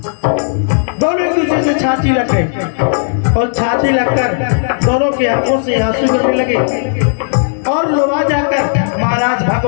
दोनों एक दूसरे से छाती लग गए और छाती लगकर दोनों की आंखों से आंसू गिरने लगे। और लोवा जाकर महाराज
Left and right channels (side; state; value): right; silent; digital silence